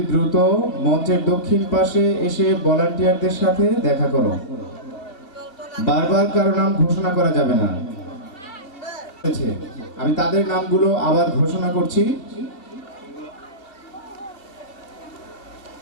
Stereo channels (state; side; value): late; right; 2.6 ms